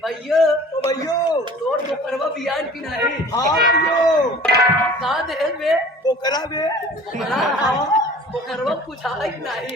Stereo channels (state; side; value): normal; both; correlation 0.45